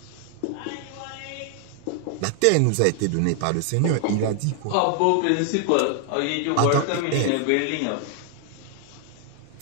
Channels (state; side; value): different; both; correlation 0.00